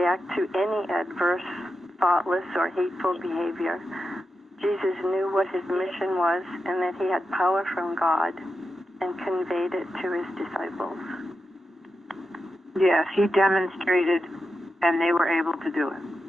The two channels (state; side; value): normal; both; correlation 0.89